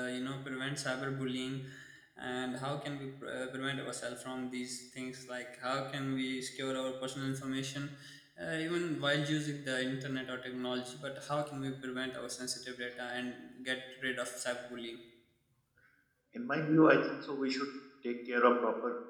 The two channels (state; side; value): identical; both; correlation 1.00